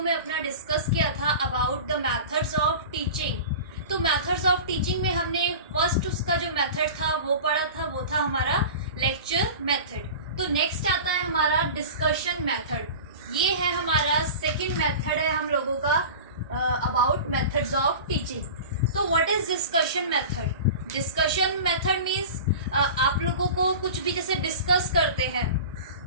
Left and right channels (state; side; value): inverted; both; correlation -0.34